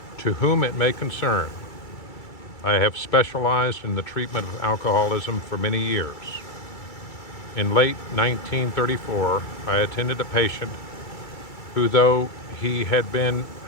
To whom it may concern, I have specialized in the treatment of alcoholism for many years. In late 1934, I attended a patient who, though he had been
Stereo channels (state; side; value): late; right; 2.3 ms